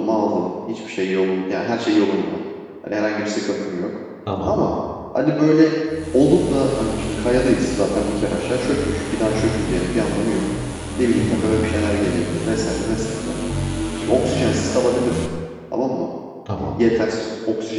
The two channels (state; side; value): identical; both; correlation 1.00